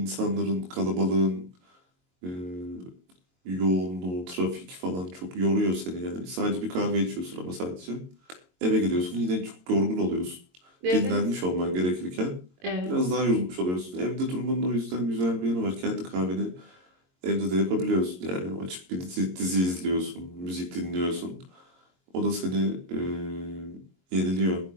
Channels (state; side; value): late; left; 22 ms